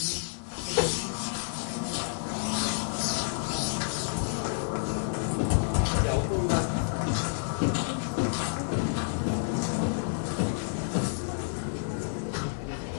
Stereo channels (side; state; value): right; silent; 58 dB below the other